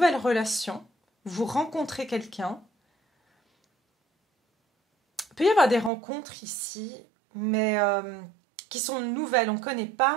relation. Vous rencontrez quelqu'un. Il peut y avoir des rencontres ici, mais... qui sont nouvelles, on ne connaît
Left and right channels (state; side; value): drops out; left; at 5.9 s